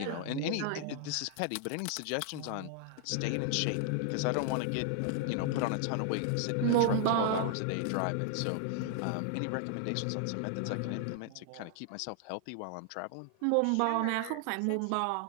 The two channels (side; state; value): both; different; correlation 0.00